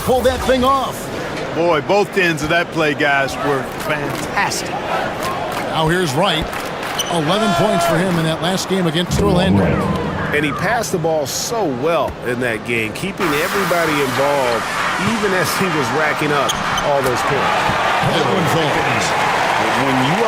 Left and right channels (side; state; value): both; identical; correlation 1.00